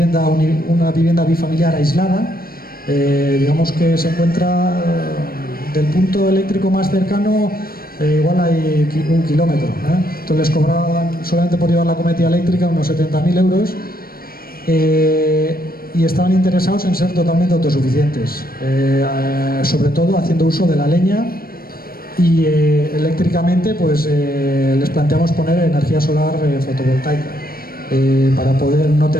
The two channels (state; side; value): late; right; 0.43 ms